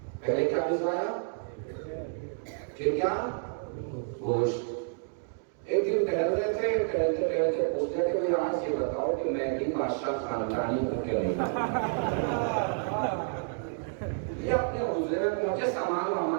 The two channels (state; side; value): silent; left; 58 dB below the other